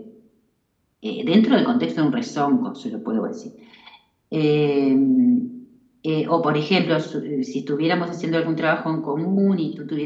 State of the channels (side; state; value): both; identical; correlation 1.00